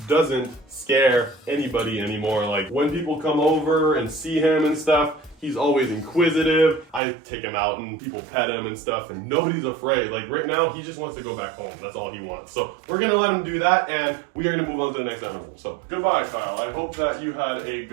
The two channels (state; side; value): drops out; left; at 7.0 s